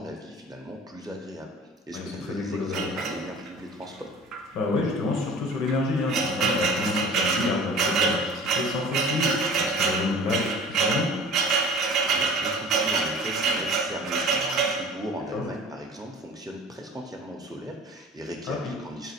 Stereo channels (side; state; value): both; normal; correlation 0.43